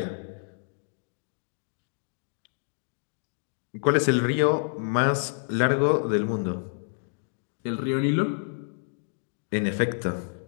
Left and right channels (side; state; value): right; silent; digital silence